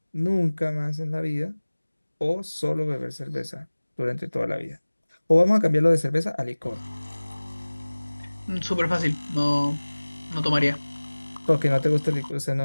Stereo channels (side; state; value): both; inverted; correlation -1.00